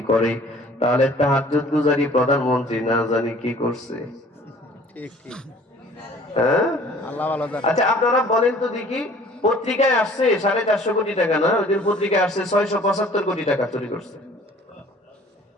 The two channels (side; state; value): both; normal; correlation 0.52